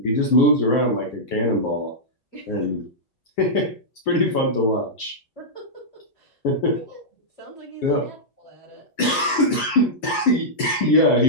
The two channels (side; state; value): right; late; 8.5 ms